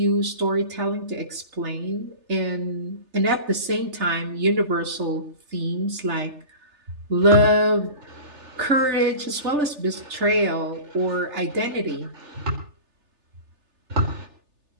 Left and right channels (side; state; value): left; late; 3.3 ms